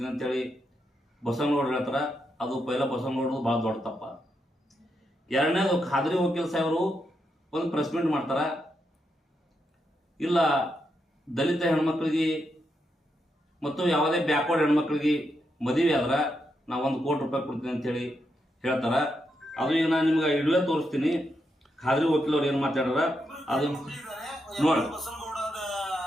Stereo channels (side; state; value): both; normal; correlation 0.83